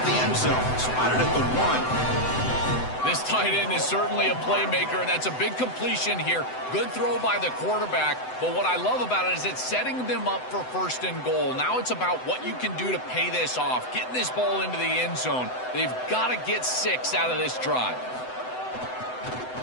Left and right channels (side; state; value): right; late; 7.9 ms